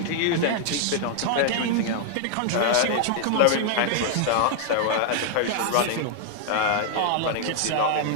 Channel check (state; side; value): different; both; correlation 0.00